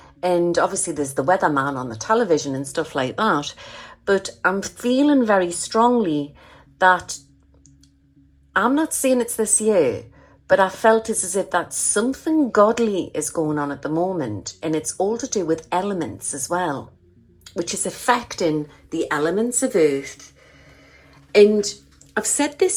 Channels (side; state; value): both; identical; correlation 1.00